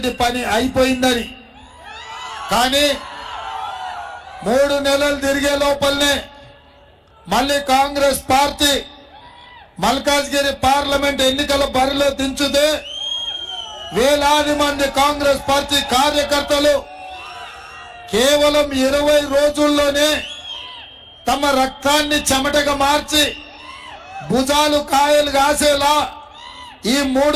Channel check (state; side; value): identical; both; correlation 1.00